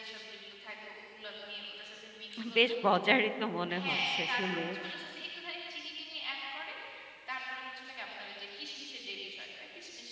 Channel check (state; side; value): identical; both; correlation 1.00